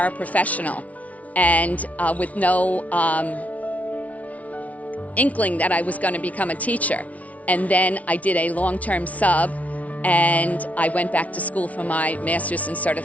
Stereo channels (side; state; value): right; late; 0.068 ms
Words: and with no inkling that I was going to become a teacher. And then I did a long-term sub and I went back to school for my master's in